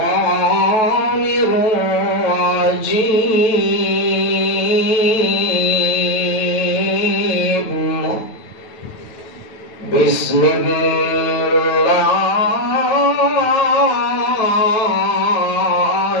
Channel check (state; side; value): late; right; 9.2 ms